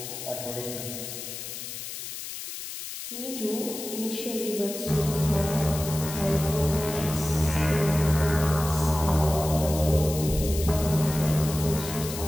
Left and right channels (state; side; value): noise; left; hiss, 8 dB below the sound